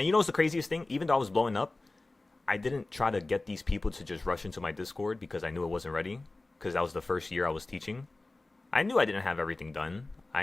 you know what's the craziest thing? Even though I was blowing up, I didn't try to get these people to just rush into my Discord because I knew it wasn't ready. Because that was the first year I was teaching. I knew I didn't have everything done.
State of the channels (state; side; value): quieter; right; 3.1 dB